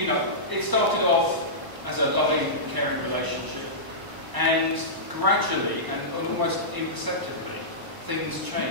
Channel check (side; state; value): left; late; 1.0 ms